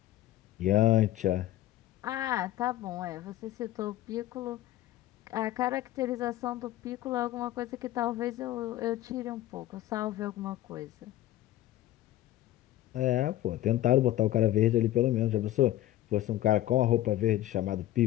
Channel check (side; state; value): right; quieter; 14.2 dB